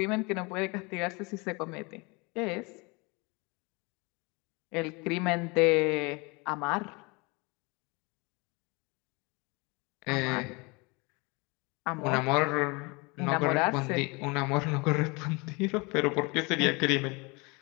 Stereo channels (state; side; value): quieter; right; 27.9 dB